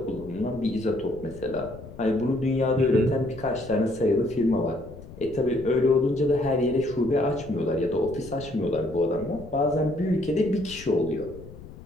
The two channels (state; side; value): noise; left; rumble, 16 dB below the sound